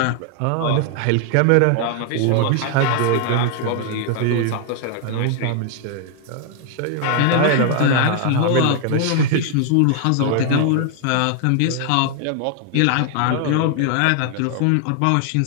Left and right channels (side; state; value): both; different; correlation 0.00